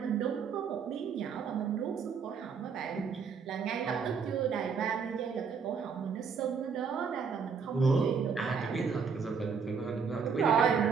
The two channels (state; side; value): quieter; left; 6.0 dB